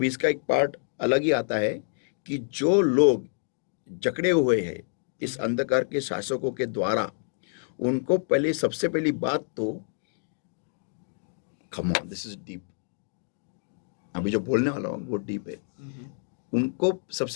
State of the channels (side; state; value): right; silent; 56 dB below the other